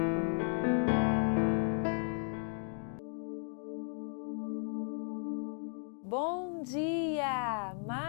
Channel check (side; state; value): right; silent; 54 dB below the other